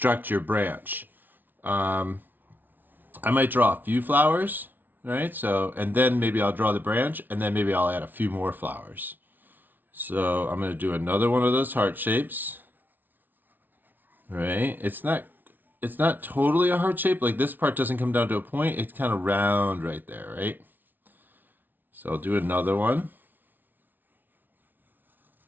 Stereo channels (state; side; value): late; left; 0.087 ms